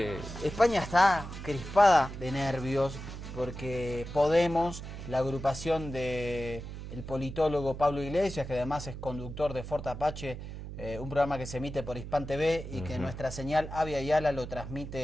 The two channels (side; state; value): right; noise; hum, 9 dB below the sound